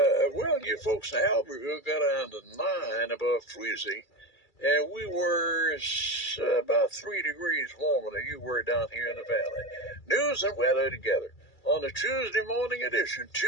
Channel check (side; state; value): right; late; 2.3 ms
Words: you folks in Albertville got down to 9 above freezing. And we were about 3 degrees warmer than you were down here in the valley. News and weather together on the Tuesday morning edition.